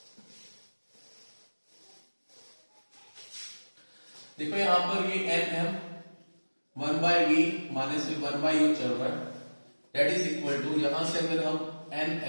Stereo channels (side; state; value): both; inverted; correlation -1.00